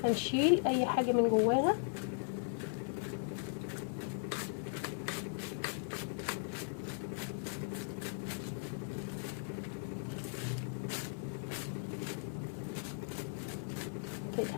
هنشيل اي حاجه من جواها. كده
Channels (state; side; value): silent; right; digital silence